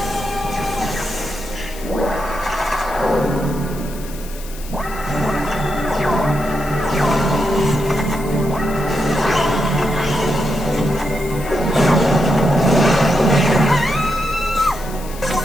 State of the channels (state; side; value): noise; left; hiss, 17 dB below the sound